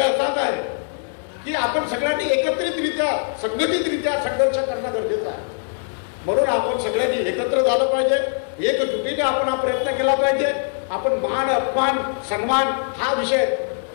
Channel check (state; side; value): silent; right; digital silence